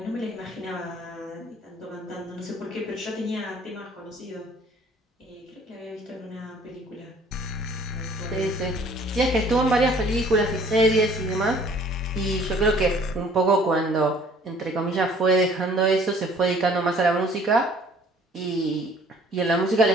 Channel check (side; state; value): both; normal; correlation 0.55